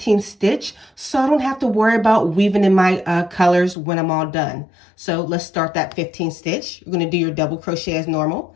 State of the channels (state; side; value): drops out; right; at 3.8 s